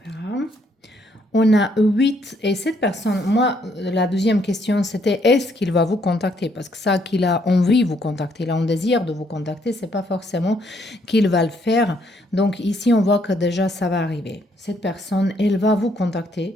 On a 8 et cette personne, moi, la deuxième question, c'était est-ce qu'il va vous contacter? Parce que ça, qu'il a envie de vous contacter, il a un désir de vous contacter, c'est pas forcément qu'il va le faire. Donc ici, on voit que déjà, ça va arriver. Cette personne, elle va vous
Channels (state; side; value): normal; both; correlation 0.70